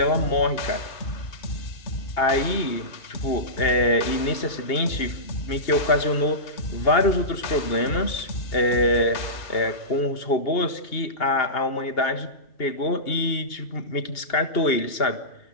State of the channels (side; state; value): right; late; 2.8 ms